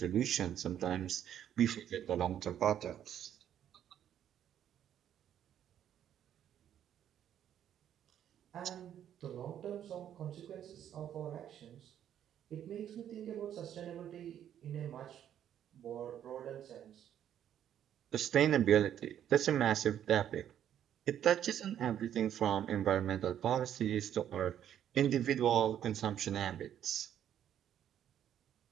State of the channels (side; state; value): left; quieter; 10.2 dB